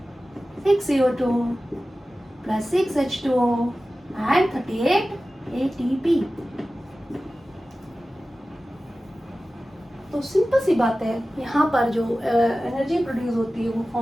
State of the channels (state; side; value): normal; both; correlation 0.96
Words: 6CO2 plus 6H2O and 38 ATP। तो सिंपल सी बात है, यहाँ पर जो एनर्जी प्रोड्यूस होती है वो